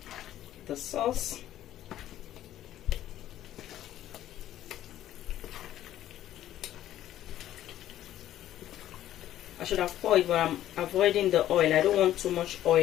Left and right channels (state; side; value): quieter; right; 12.7 dB